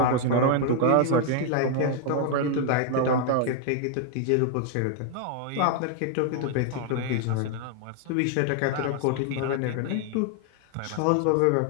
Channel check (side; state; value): both; different; correlation 0.00